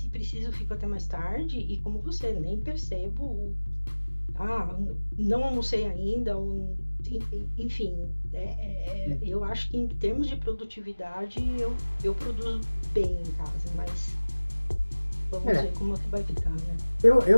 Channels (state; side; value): inverted; both; correlation -1.00